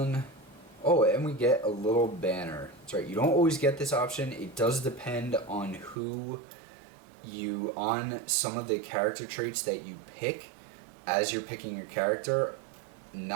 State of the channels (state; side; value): drops out; left; at 6.0 s